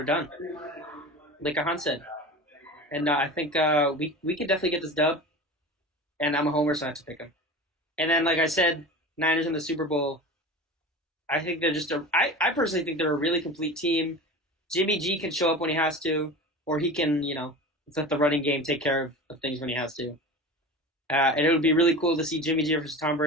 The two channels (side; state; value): both; normal; correlation 0.32